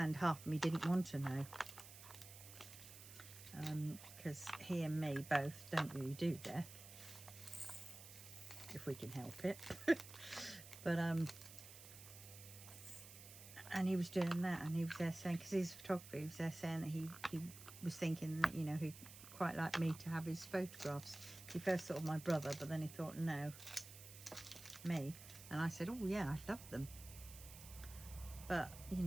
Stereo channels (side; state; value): right; noise; hiss, 15 dB below the sound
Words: half of me didn't want to know, because he and me both don't really do death if we can help it. But and he was doing that, and he was there saying, because he's a photographer, he was there saying that he was thinking that, you know, he'd quite like me to have his photographs. He first thought of my brother, but then he thought, no, me. And I said, oh yeah, I love them, but you